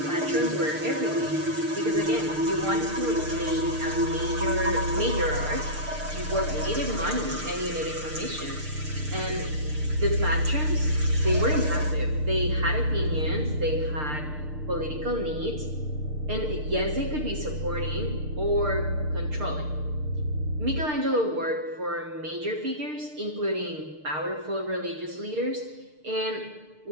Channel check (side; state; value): left; late; 6.6 ms